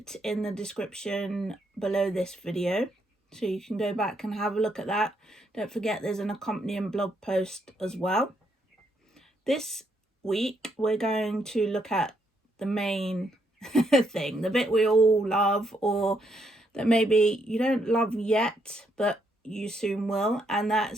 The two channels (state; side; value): normal; both; correlation 0.75